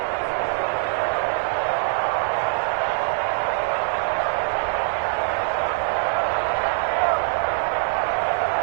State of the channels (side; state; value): left; silent; digital silence